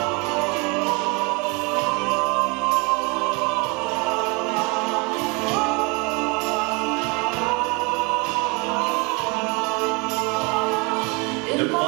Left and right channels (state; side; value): quieter; left; 29.3 dB